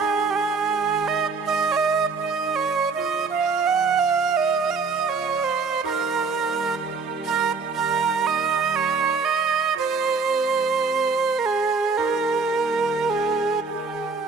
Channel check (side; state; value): left; quieter; 4.7 dB